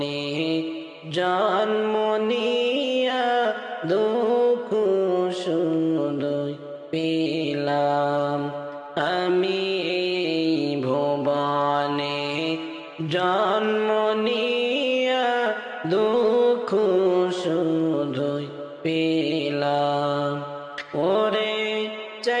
জন্ম নিয়া দুঃখ শুধুই পেলাম। আমি এই ভুবনে জন্ম নিয়া দুঃখ শুধুই পেলাম। ওরে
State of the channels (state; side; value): identical; both; correlation 1.00